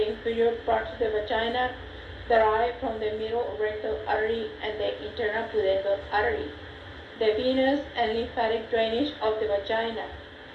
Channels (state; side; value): identical; both; correlation 1.00